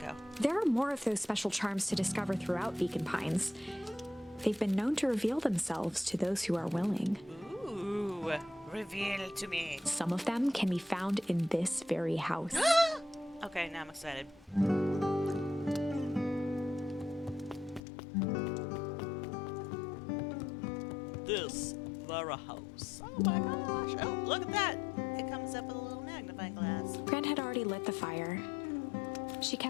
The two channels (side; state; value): right; drops out; at 17.8 s